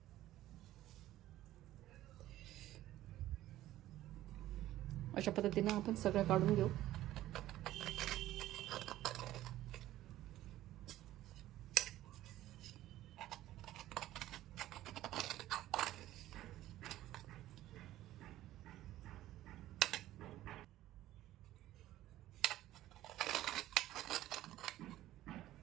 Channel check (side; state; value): left; quieter; 14.5 dB